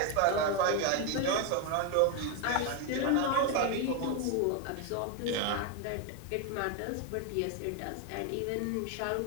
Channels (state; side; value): different; both; correlation 0.01